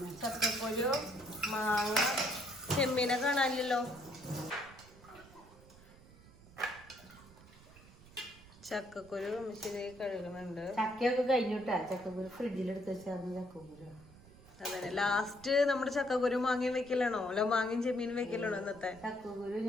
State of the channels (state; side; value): noise; right; rumble, 22 dB below the sound